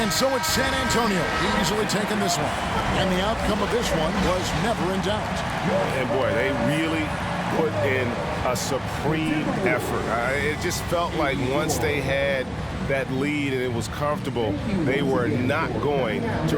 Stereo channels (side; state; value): both; identical; correlation 1.00